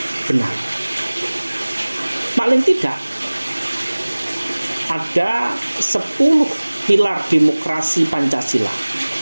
benar. Paling tidak ada 10 pilar demokrasi Pancasila.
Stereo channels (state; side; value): inverted; both; correlation -1.00